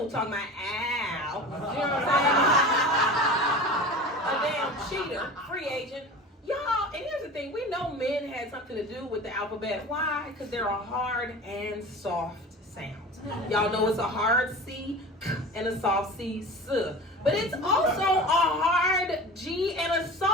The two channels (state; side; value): normal; both; correlation 0.35